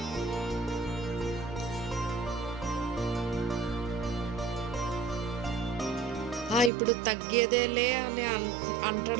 ఇప్పుడు తగ్గేదేలే అని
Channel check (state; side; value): drops out; left; at 6.7 s